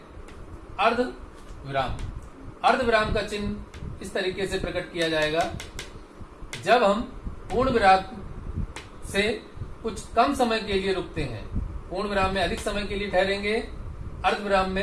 अर्ध विराम। अर्ध विराम का चिन्ह इस तरीके से प्रकट किया जाएगा। जब हम पूर्ण विराम से कुछ कम समय के लिए रुकते हैं, पूर्ण विराम में अधिक समय के लिए ठहरेंगे अर्धविराम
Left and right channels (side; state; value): both; identical; correlation 1.00